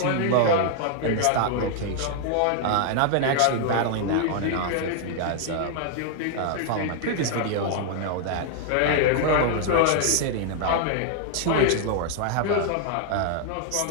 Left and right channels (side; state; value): both; different; correlation 0.00